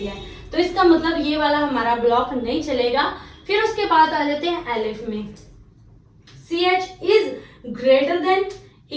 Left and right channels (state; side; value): identical; both; correlation 1.00